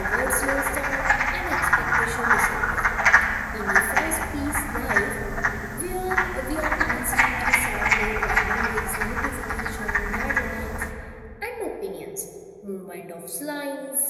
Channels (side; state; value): both; identical; correlation 1.00